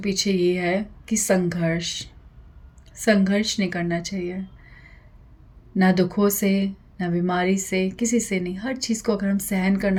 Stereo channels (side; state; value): both; identical; correlation 1.00